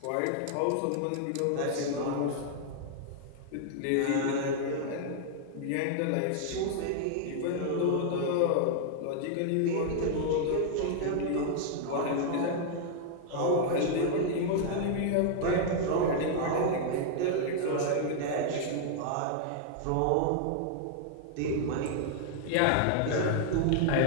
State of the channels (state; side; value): different; both; correlation -0.01